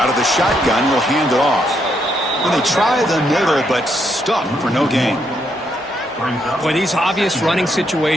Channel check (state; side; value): normal; both; correlation 0.76